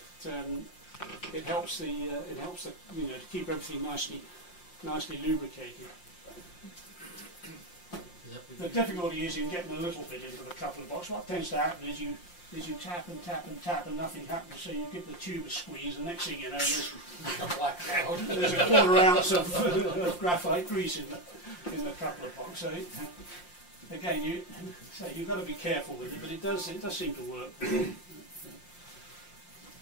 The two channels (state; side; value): late; right; 5.7 ms